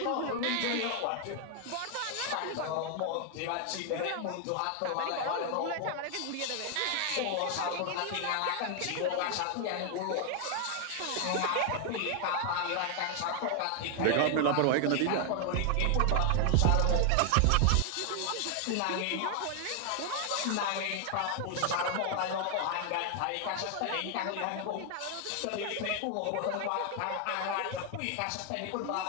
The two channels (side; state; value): both; different; correlation 0.00